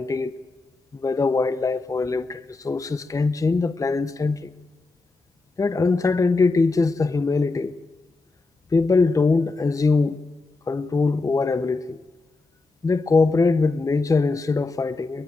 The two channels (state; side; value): quieter; right; 3.6 dB